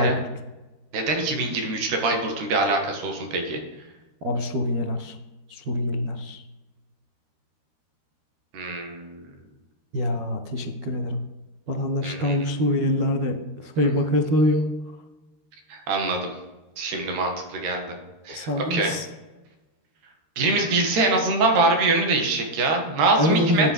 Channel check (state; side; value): late; left; 13 ms